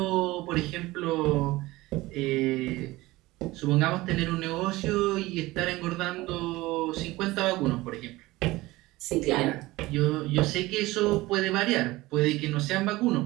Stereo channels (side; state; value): left; quieter; 19.4 dB